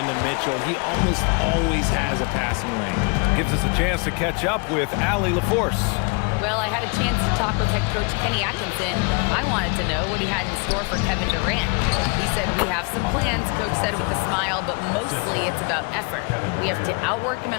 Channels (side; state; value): right; quieter; 32.7 dB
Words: to Mitchell. He almost always has a passing lane. Gives us a chance to catch up with Allie LaForce. Well, I had a chance to talk with head coach Kenny Atkinson. I wanted to know what he had in store for Kevin Durant. He said, we have some plans, coach said with a smile, but mostly it's about effort. We have to outwork him